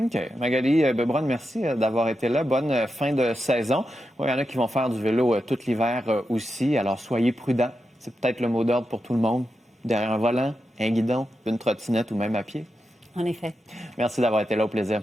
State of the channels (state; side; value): normal; both; correlation 0.88